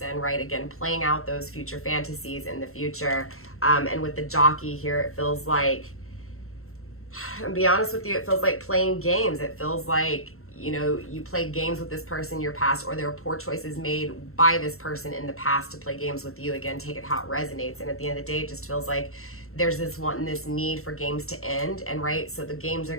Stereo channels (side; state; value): right; late; 0.63 ms